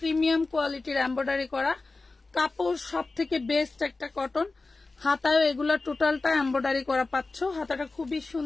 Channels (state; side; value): quieter; right; 3.5 dB